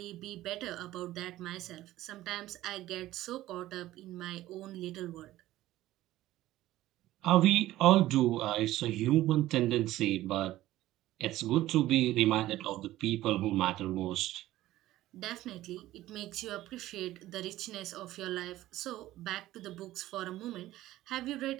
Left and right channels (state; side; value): quieter; left; 15.4 dB